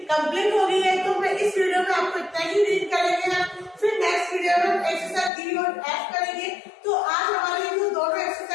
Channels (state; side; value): drops out; right; at 5.3 s